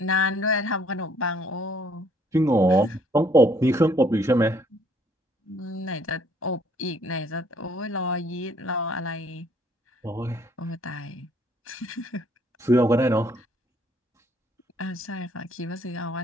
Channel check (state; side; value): normal; both; correlation 0.63